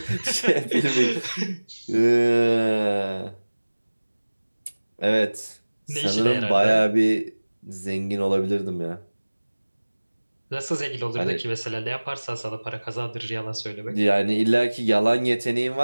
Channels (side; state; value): both; inverted; correlation -1.00